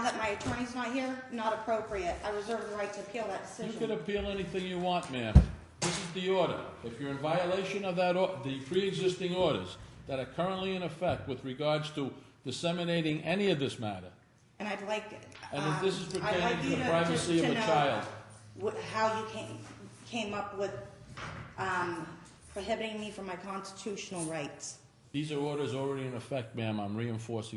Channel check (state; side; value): identical; both; correlation 1.00